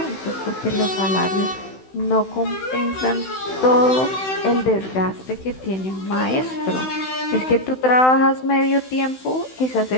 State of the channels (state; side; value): late; right; 16 ms